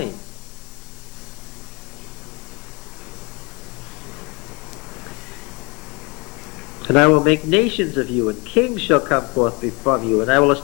And I will make nations of you, and kings shall come forth from you, and I will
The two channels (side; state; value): right; quieter; 27.6 dB